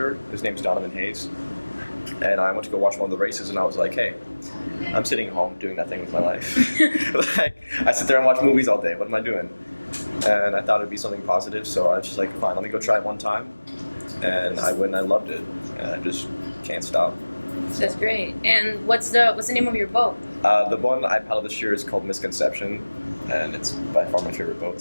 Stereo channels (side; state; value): both; inverted; correlation -1.00